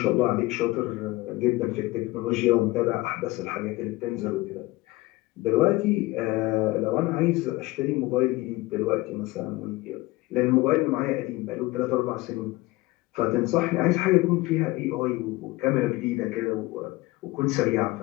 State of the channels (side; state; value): right; quieter; 20.6 dB